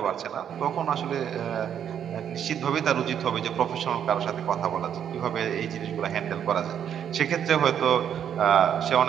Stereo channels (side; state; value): left; quieter; 9.0 dB